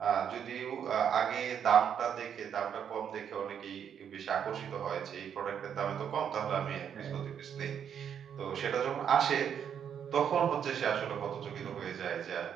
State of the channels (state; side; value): quieter; left; 8.3 dB